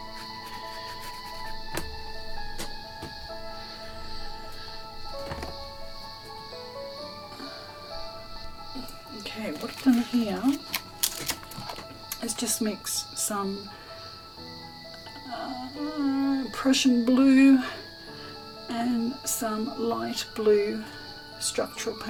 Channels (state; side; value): identical; both; correlation 1.00